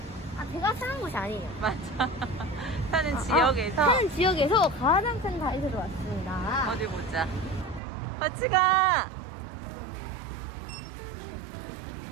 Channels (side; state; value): left; drops out; at 7.8 s